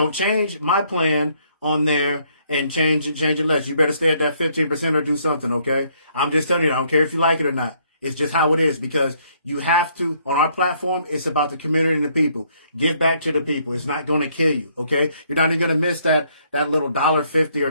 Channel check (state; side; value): inverted; both; correlation -0.68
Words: change my plan on there and change it less. You better stay at that 15% or do something, okay? I'm just telling you, I don't care if you like it or not. It's just how it is because you have to, on our platform, it's about the community and the people. Give back to the people. It's not going to kill you, okay? You're not even going to miss that little $1.50